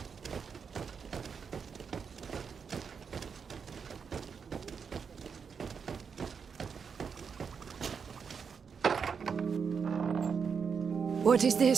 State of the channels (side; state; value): left; quieter; 6.2 dB